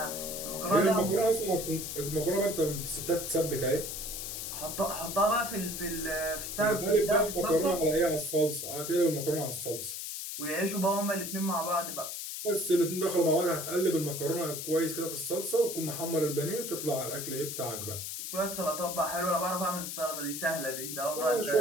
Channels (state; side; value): noise; left; hiss, 6 dB below the sound